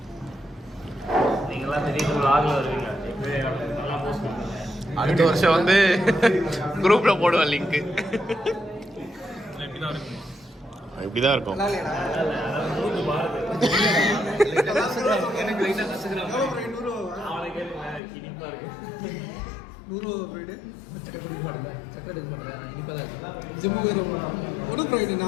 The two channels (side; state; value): right; drops out; at 18.0 s